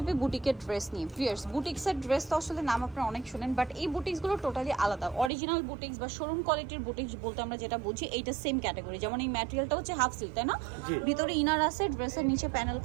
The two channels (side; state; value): left; drops out; at 5.3 s